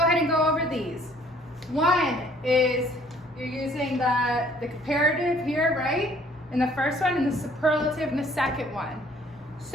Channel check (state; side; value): normal; both; correlation 0.59